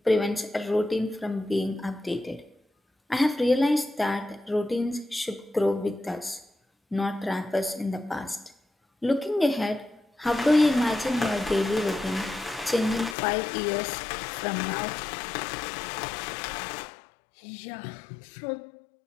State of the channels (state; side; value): drops out; right; at 13.2 s